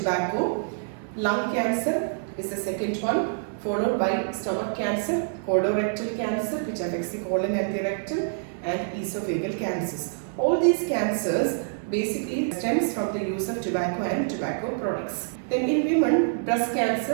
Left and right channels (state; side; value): silent; left; 61 dB below the other